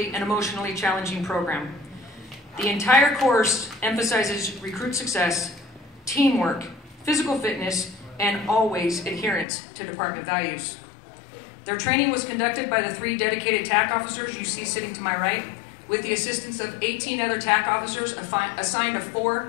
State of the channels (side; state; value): right; drops out; at 9.5 s